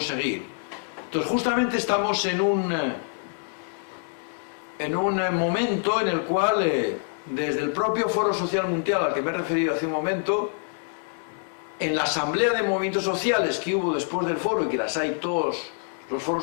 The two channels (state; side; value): silent; right; digital silence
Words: Entonces justamente estamos en un momento en el cual desde el propio Foro Social Mundial al que me he referido hace un momento, en la asamblea de movimientos sociales que hubo después del foro, y que las hay todos los foros